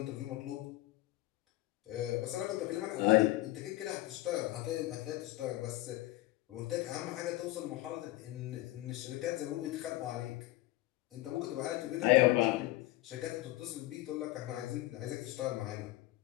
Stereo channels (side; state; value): right; quieter; 17.6 dB